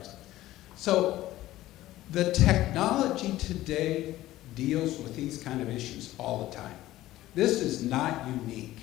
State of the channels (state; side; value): quieter; right; 15.5 dB